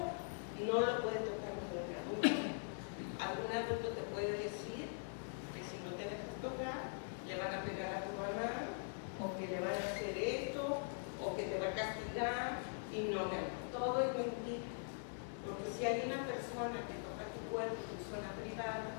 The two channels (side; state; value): right; silent; digital silence